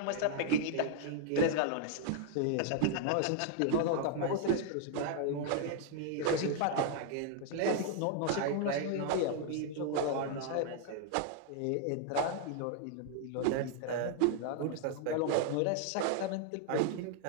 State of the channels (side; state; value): both; different; correlation 0.00